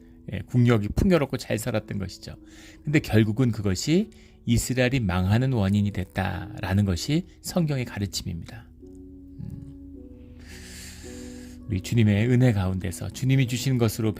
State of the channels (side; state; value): both; identical; correlation 1.00